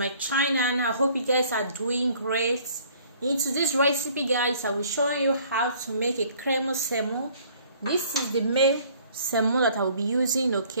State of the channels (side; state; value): both; inverted; correlation -0.57